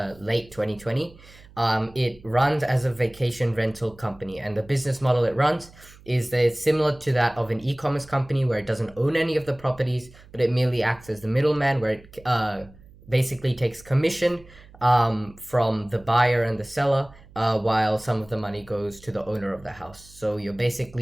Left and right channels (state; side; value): noise; right; hum, 23 dB below the sound